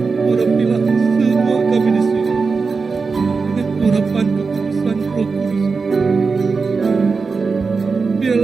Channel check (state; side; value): quieter; left; 4.6 dB